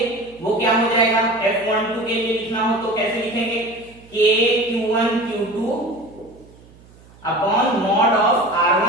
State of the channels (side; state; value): right; noise; hum, 25 dB below the sound